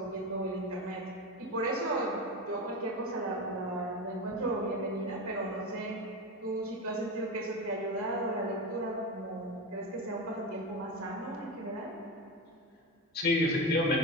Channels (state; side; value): normal; both; correlation 0.20